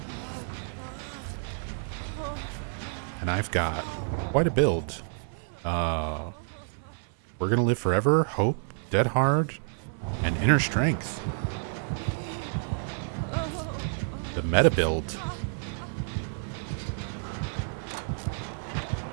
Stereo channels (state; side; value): silent; left; 55 dB below the other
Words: And I've got quite a build. We're Gonna Live Forever, Hope, Dead Hard, and Inner Strength. The meta build.